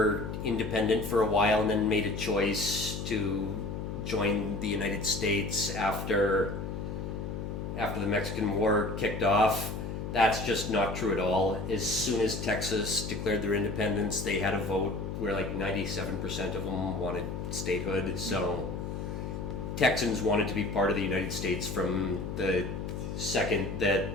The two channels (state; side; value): noise; left; hum, 5 dB below the sound